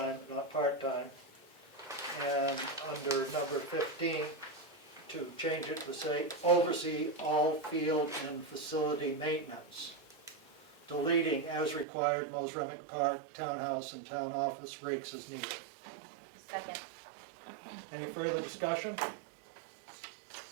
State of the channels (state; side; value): drops out; left; at 11.9 s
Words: not part-time. And under number 15, to change it to say, oversee all field and facility maintenance. Deleting as required, Mosremick Park, townhouse, and town office rakes as needed. Second. Any further discussion?